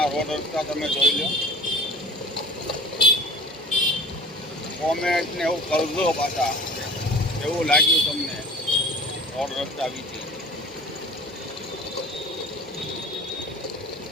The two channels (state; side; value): normal; both; correlation 0.42